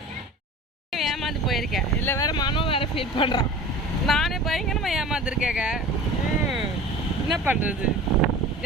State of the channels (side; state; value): both; normal; correlation 0.38